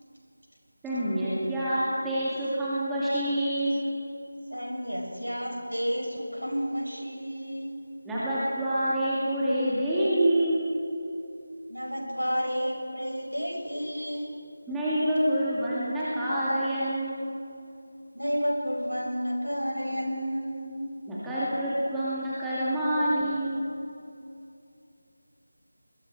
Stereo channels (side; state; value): both; inverted; correlation -0.89